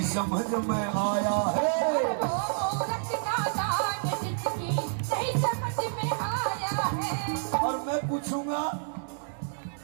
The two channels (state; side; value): silent; left; digital silence